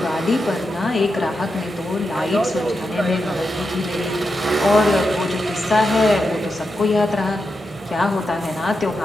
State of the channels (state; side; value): normal; both; correlation 0.87